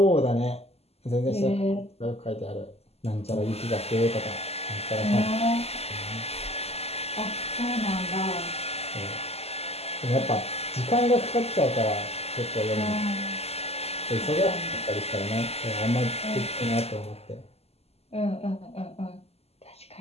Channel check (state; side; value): late; right; 0.29 ms